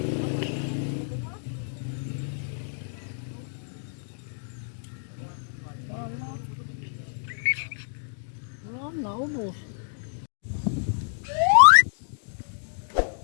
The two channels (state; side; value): silent; right; digital silence